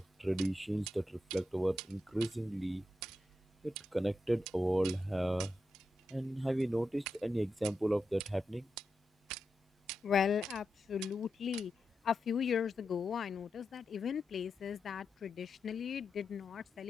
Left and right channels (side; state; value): both; normal; correlation 0.88